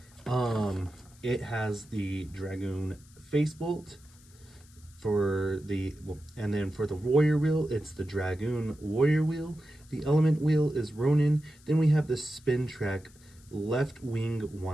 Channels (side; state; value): left; noise; hiss, 27 dB below the sound